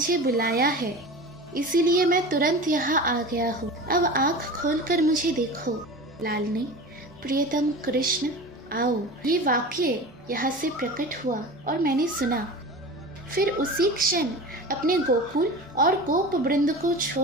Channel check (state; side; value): normal; both; correlation 0.33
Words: बुलाया है, इसीलिए मैं तुरंत यहाँ आ गया हूँ। अब आँख खोलकर मुझे देखो। लालनी, प्रियतम कृष्ण, आओ, ये वाक्य यहाँ से प्रकट हुआ और मैंने सुना। फिर उसी क्षण अपने गोकुल और गोप वृंद को